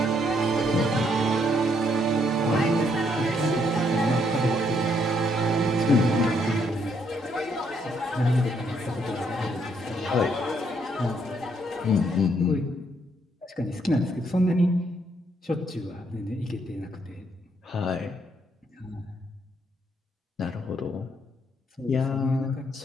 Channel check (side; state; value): both; normal; correlation 0.72